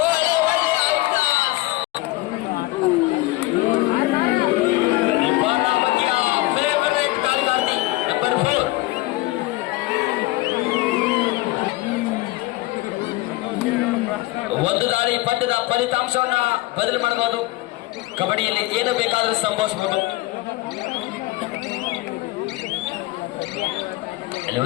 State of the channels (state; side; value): quieter; right; 19.9 dB